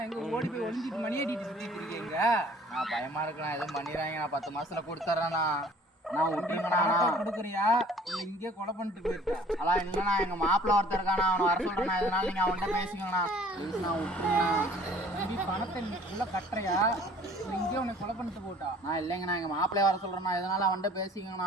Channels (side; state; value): both; normal; correlation 0.53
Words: எங்க ஓடி போய் ஒளிஞ்சிட்டு மணி அடிட்டு சுத்திட்டு இருக்கீங்க. நான் பயமா இருக்குண்ணா, எதுவும் பண்ணிடுறாங்க. நான் 10 மாசத்துல கொடுத்துறேண்ணா. நான் விட்டுருங்கண்ணா. கொடுக்குறியா இல்ல இங்கே கொலை பண்ணிட்டு போயிருக்கா? அதான் இல்லைண்ணா, எங்க மாப்பிள்ள ஒருத்தர் இருக்காண்ணா, அவனை வர சொல்றேண்ணா. இதனால நீங்க அவன்கிட்ட பேசிக்கோங்கண்ணா. ப்ளீஸ் நான் விட்டுருங்கண்ணா. தம்பி பணத்தை நீ உள்ள கட்டுறியா இல்லை இங்கே உன்னை கொலை பண்ணிட்டு போட்டா? நான் இல்லைங்கண்ணா, எங்க மாப்பிள்ளைய வர சொல்றேண்ணா. இதனால அவன்கிட்ட